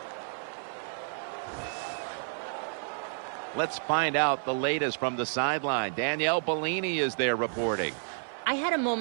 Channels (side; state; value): left; silent; 55 dB below the other